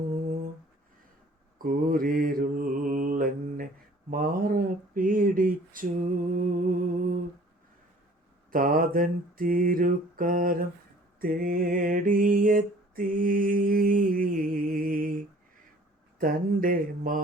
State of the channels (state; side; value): normal; both; correlation 0.52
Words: കൂരിരുളെന്നെ മാറപ്പിടിച്ചു. താതൻ തിരുക്കാരം തേടിയെത്തി, തൻ്റെ